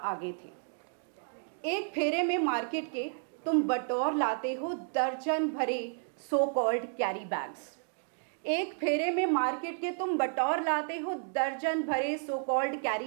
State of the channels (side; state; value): left; silent; digital silence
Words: थे। एक फेरे में मार्केट के तुम बटोर लाते हो दर्जन भरे सो कॉल्ड कैरी बैग्स। एक फेरे में मार्केट के तुम बटोर लाते हो दर्जन भरे सो कॉल्ड